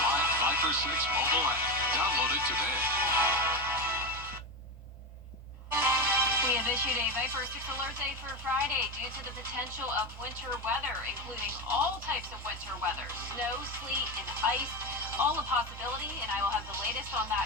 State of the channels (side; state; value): both; normal; correlation 0.16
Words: live Viper 6 mobile app. Download it today. We have issued a Viper 6 alert day for Friday due to the potential of winter weather, including all types of winter weather, snow, sleet, and ice, all a possibility, and I will have the latest on